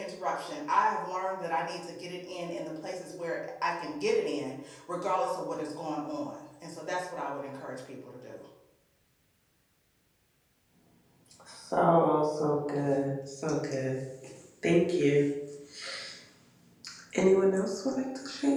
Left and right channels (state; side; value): identical; both; correlation 1.00